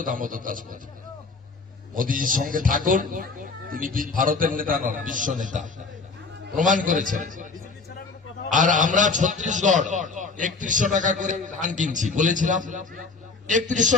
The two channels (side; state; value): right; quieter; 4.2 dB